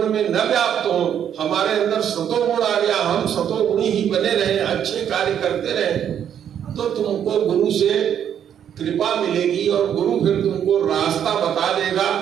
में न व्याप्त हो, हमारे अंदर सतोगुण आ गया, हम सतोगुणी ही बने रहे, अच्छे कार्य करते रहे, तो तुमको गुरु से कृपा मिलेगी और गुरु फिर तुमको रास्ता बता देगा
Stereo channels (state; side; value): quieter; left; 9.2 dB